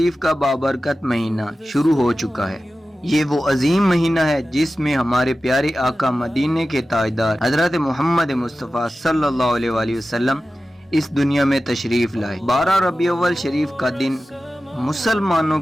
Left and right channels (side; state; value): both; normal; correlation 0.94